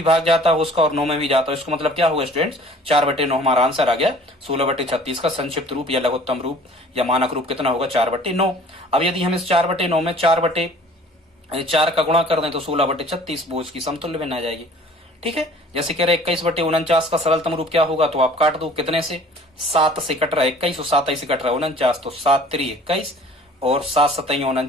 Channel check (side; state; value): both; normal; correlation 0.49